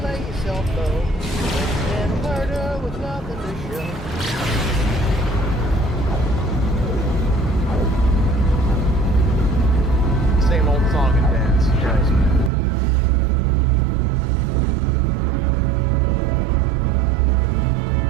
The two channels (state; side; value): drops out; left; at 12.5 s